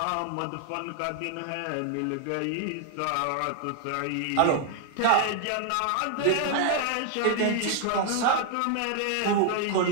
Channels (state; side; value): different; both; correlation 0.00